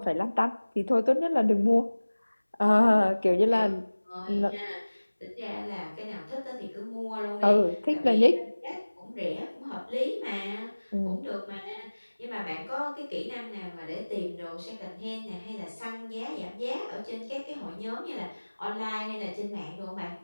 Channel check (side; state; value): both; inverted; correlation -1.00